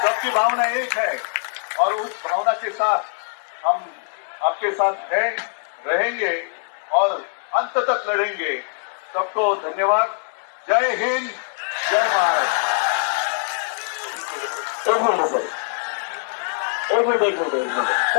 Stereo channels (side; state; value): right; silent; 64 dB below the other